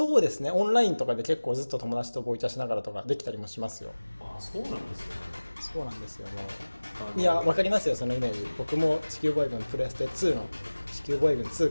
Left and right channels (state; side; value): inverted; both; correlation -1.00